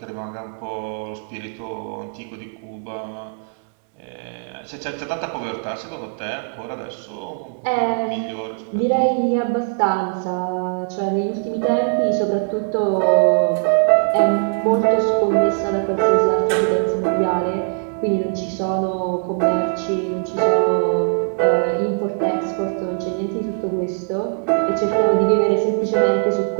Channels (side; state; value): left; silent; 65 dB below the other